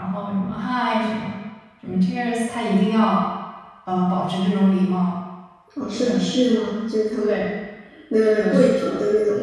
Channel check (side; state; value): both; identical; correlation 1.00